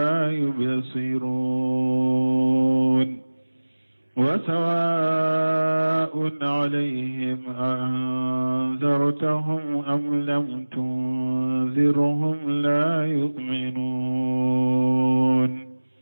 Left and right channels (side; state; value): both; inverted; correlation -1.00